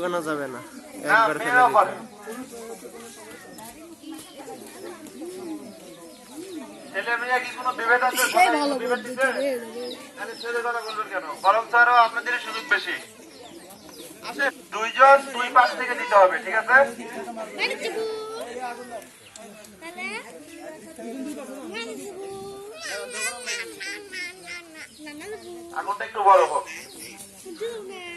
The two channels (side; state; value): both; identical; correlation 1.00